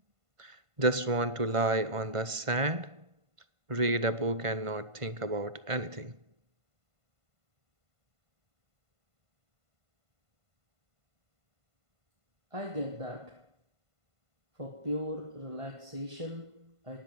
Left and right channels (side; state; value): left; late; 1.5 ms